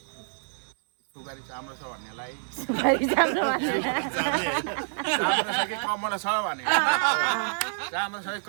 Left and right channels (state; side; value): silent; left; digital silence